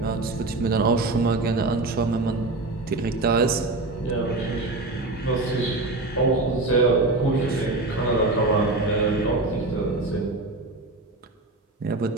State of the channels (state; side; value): quieter; left; 3.0 dB